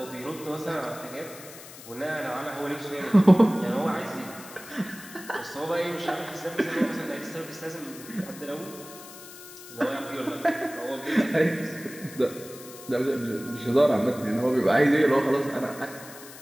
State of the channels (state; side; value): noise; left; hiss, 16 dB below the sound